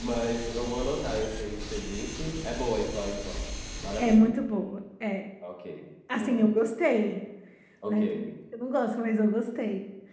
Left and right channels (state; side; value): identical; both; correlation 1.00